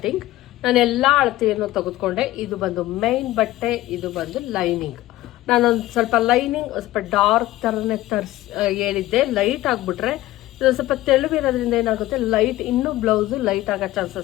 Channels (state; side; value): quieter; right; 16.3 dB